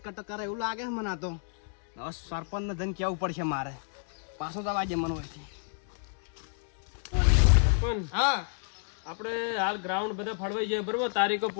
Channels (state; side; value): silent; right; 58 dB below the other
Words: કટ કરે એવું લાગે છે મને. આ તો હવે સરપંચ ને જઈને કેવું પડશે મારે. પાછો જવા દે મને હોયથી. હા આપણે હાલ ગ્રાઉન્ડ બધા ફળવાઈ જાય બરોબર. તારીખો